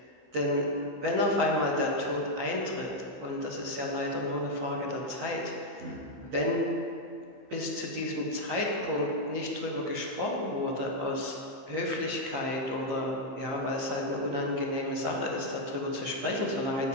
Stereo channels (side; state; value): left; late; 15 ms